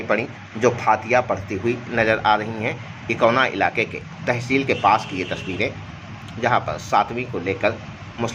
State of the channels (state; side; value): identical; both; correlation 1.00